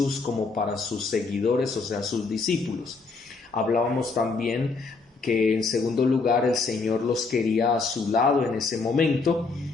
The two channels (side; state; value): right; quieter; 4.2 dB